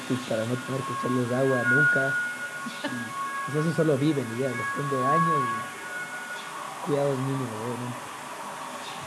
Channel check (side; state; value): both; identical; correlation 1.00